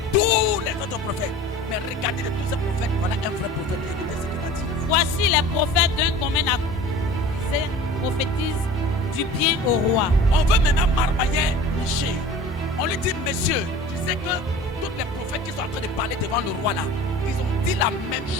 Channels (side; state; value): both; normal; correlation 0.41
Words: tous les autres prophètes. Mais regardez de tous ces prophètes, voilà un vrai prophète. Écoutez ce qu'il a dit. Voici les prophètes d'un commun accord. Ils prophétisent du bien au roi. On veut maintenant marmailler Michée. On lui dit, monsieur, tu sais que tous les prophètes qui sont en train de parler devant le roi là, ils ont dit la même